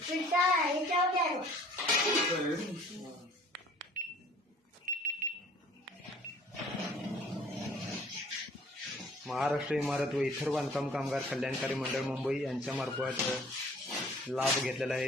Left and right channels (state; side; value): normal; both; correlation 0.53